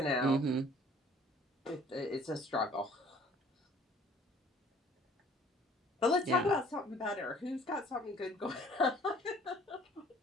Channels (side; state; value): both; normal; correlation 0.54